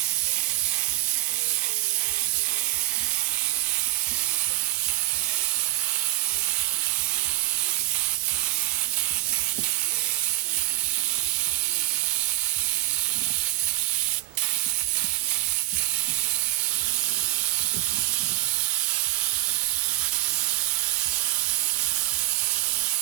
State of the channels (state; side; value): quieter; left; 17.0 dB